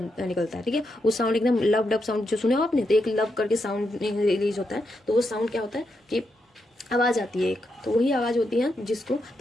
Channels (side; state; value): both; normal; correlation 0.83